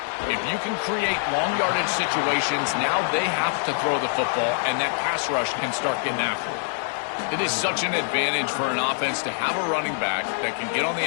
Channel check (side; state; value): right; silent; 62 dB below the other